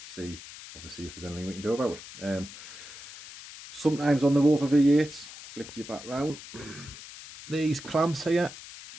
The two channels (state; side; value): noise; left; hiss, 15 dB below the sound